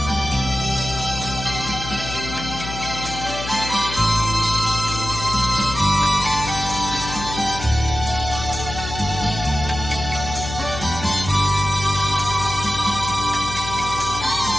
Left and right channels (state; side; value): noise; left; hum, 8 dB below the sound